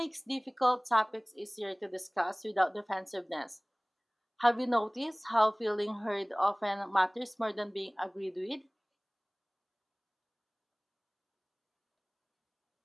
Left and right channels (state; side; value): identical; both; correlation 1.00